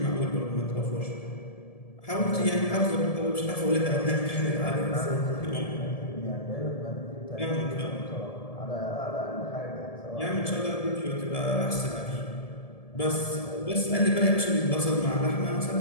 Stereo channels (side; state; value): right; late; 1.7 ms